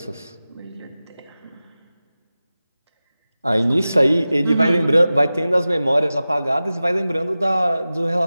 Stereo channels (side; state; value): both; inverted; correlation -0.96